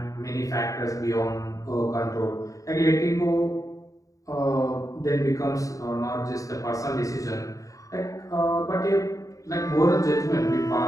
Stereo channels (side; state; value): right; late; 0.16 ms